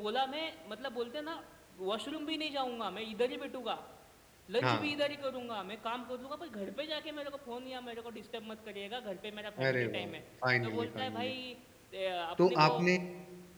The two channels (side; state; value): both; identical; correlation 1.00